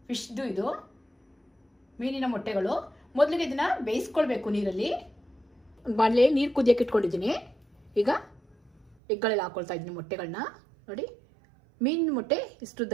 ಫಿಶ್ದು ಇದು ಮೀನಿನ ಮೊಟ್ಟೆಗಳು. ಮೊದಲಿಗೆ ಇದನ್ನು ಬೇಯಿಸ್ಕೊಳ್ಬೇಕು ನೀರಲ್ಲಿ. ಬಾಣಲೆ ನೀರು ಕುದಿಯೋಕೆ ಇಟ್ಕೊಂಡಿದ್ದೀನಿ. ಈಗ ಎಗ್ಗಳೆಲ್ಲ ಹಾಕ್ಕೊಳ್ತಾ ಇದ್ದೀನಿ ಮೊಟ್ಟೆಗಳನ್ನ. ನೋಡಿ, ಮೀನಿನ ಮೊಟ್ಟೆ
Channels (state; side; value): drops out; left; at 9.0 s